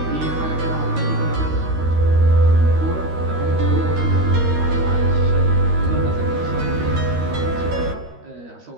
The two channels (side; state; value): left; late; 13 ms